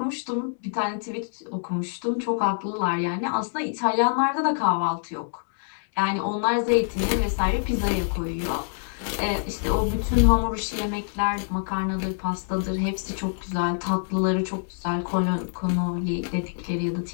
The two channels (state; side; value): silent; right; digital silence